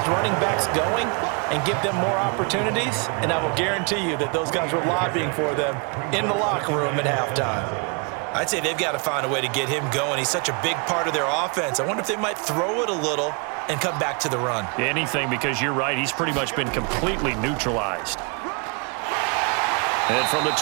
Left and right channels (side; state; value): left; quieter; 34.2 dB